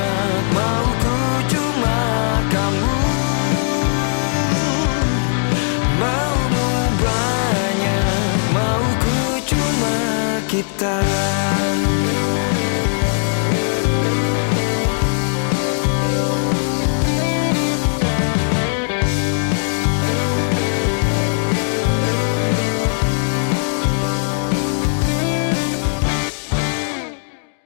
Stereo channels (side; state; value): right; silent; digital silence